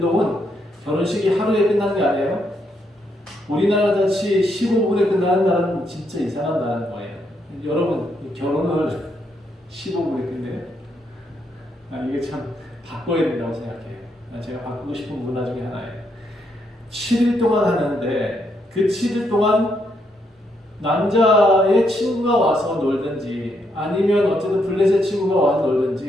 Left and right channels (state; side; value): normal; both; correlation 0.77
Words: 결혼식이 하루에 끝나는 게 아니에요. 우리나라 같이 15분에 끝나는 나라는 진짜 이상한 나라인 거예요. 여러분, 결혼을 15분에 끝내요? 이게 참 바꿔야 된다고 생각해요. 제가 바꾸고 싶은 문화 중에 하나예요. 7일 동안 하는데 그 7일 동안 남자의 친구가 와서 놀든지 아니면 어쨌든 블레셋 친구가 와서